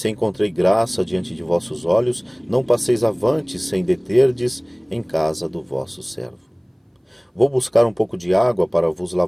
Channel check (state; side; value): identical; both; correlation 1.00